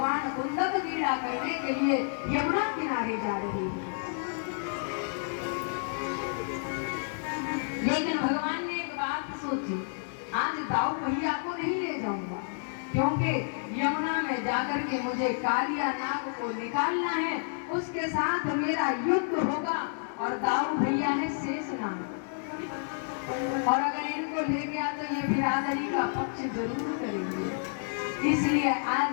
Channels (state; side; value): silent; right; digital silence